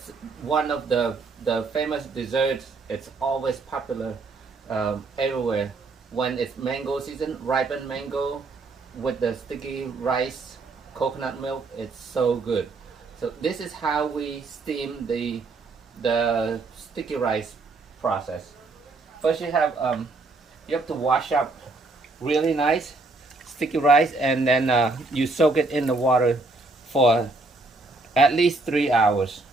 one of the famous desserts. It's always popular everywhere. When it's mango season, ripened mango with the sticky rice, coconut milk, it's so good. So this is how we steam the sticky rice process. First you have to wash up really nice sticky rice, and then you soak it in the water for at least 3 hours.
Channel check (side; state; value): left; quieter; 3.5 dB